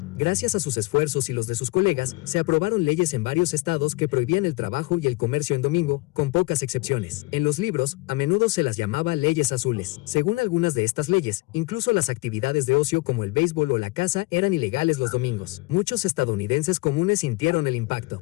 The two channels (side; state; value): right; quieter; 22.6 dB